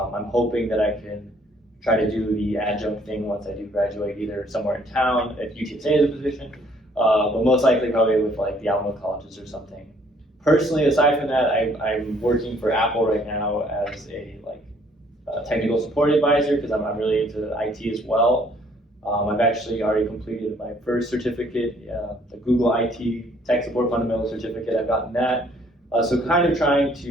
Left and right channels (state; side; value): normal; both; correlation 0.62